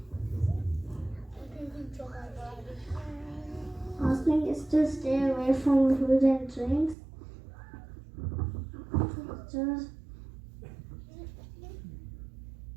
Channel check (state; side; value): drops out; left; at 7.0 s